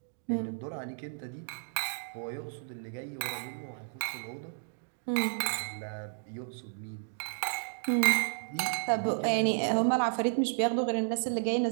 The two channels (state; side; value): silent; left; digital silence